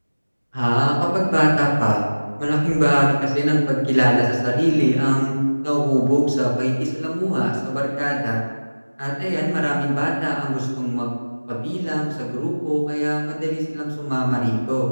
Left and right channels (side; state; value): both; inverted; correlation -1.00